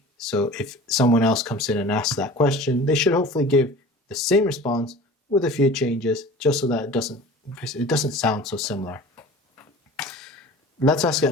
So if someone else comes in and asks that question, they should hopefully give the same response with a few changes, just so that it doesn't sound so similar. Let's ask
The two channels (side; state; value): both; normal; correlation 0.40